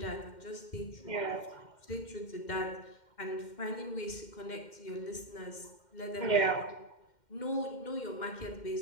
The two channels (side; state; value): right; late; 2.1 ms